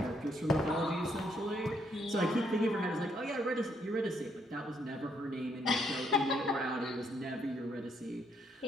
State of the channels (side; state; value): both; normal; correlation 0.73